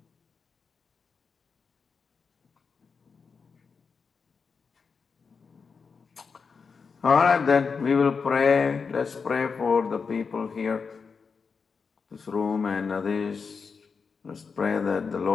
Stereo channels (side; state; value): right; quieter; 5.3 dB